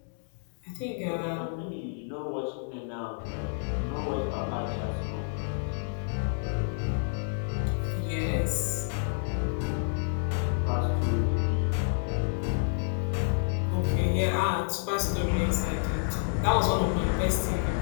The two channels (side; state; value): right; silent; digital silence